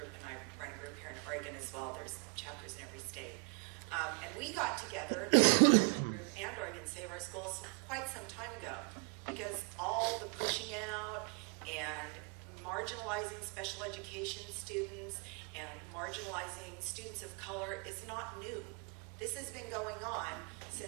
and I run a group here in Oregon as well. There's chapters in every state. And we got together, the group and Oregon Save Our Schools, quite some time ago, because all the pushing out and marginalizing special education students and marginalizing students of color is not new. This has been going on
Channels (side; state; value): left; quieter; 35.4 dB